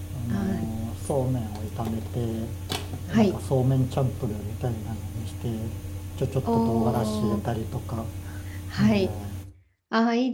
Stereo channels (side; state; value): both; identical; correlation 1.00